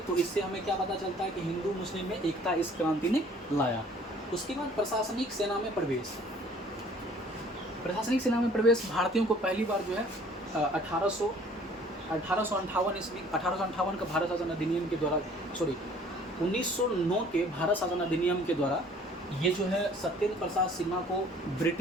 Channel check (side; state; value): both; normal; correlation 0.54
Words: इससे हमें क्या पता चलता है कि हिंदू मुस्लिम में एकता इस क्रांति ने लाया। उसके बाद प्रशासनिक सेना में प्रवेश भारतीयों को पहली बार जो है 1858 ईस्वी, 1858 का भारत शासन अधिनियम के द्वारा, 1909 के भारत शासन अधिनियम के द्वारा ये जो है सत्येंद्र प्रसाद सिन्हा को